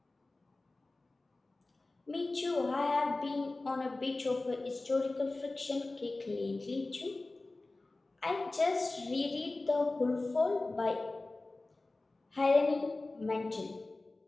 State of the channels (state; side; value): quieter; right; 3.1 dB